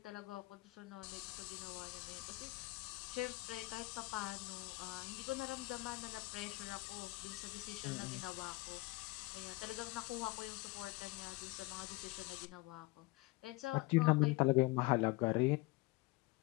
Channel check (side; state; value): right; quieter; 22.7 dB